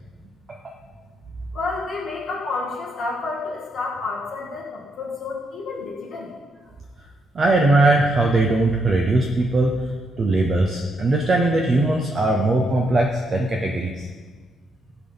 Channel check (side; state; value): both; normal; correlation 0.78